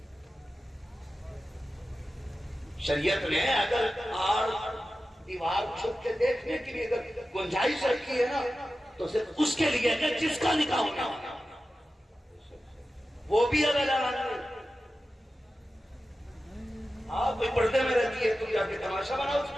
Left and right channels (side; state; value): both; normal; correlation 0.93